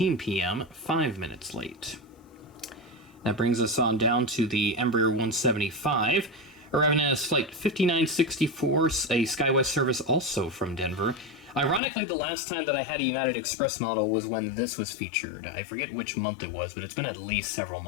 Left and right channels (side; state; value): right; drops out; at 11.8 s